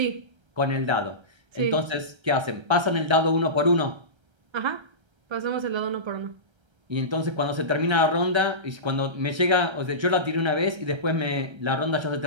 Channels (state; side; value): late; left; 1.3 ms